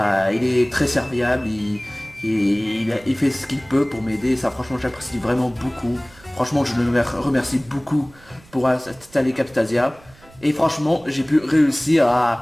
il est très serviable, il fait ce qu'il peut pour m'aider, ça franchement j'apprécie vraiment beaucoup. Franchement je le remercie beaucoup pour installer Camtasia. Et franchement j'ai pu réussir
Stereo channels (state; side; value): noise; right; rumble, 25 dB below the sound